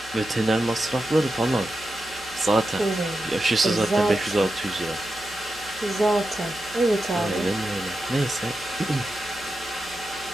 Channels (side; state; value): right; noise; hum, 22 dB below the sound